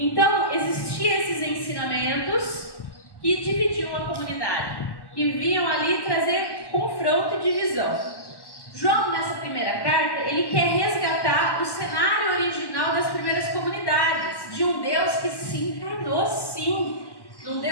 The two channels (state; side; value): late; right; 1.1 ms